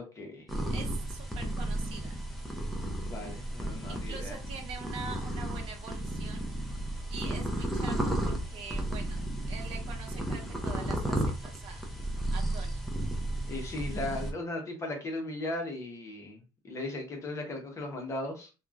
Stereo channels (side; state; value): both; normal; correlation 0.75